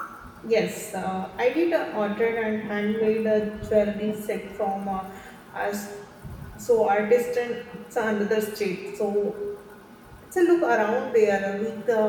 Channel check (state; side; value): identical; both; correlation 1.00